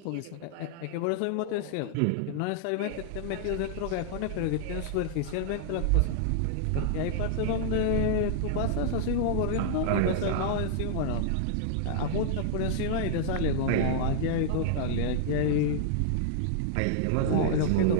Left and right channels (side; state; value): both; different; correlation -0.01